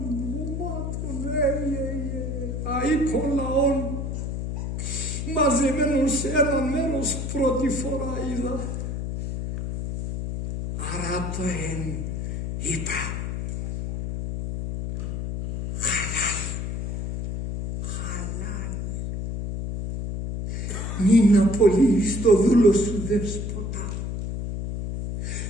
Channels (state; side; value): noise; left; hum, 4 dB below the sound